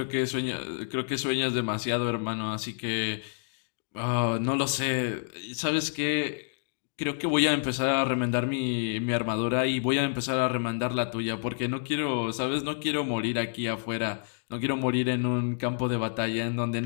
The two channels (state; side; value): silent; right; digital silence